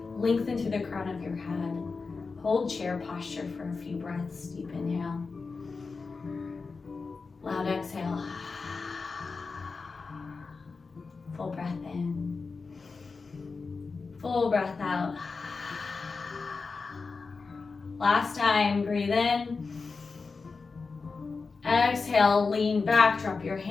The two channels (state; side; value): quieter; right; 4.5 dB